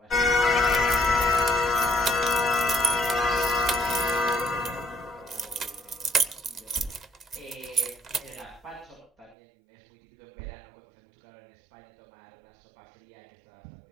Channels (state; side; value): drops out; left; at 9.3 s